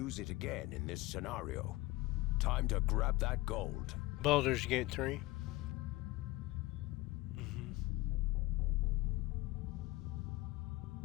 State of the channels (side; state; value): right; quieter; 19.3 dB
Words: it again in this scenario. Time to grab that gold. Baldur's Gate 3.